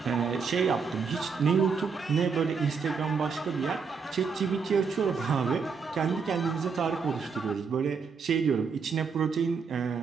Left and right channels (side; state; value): left; quieter; 5.5 dB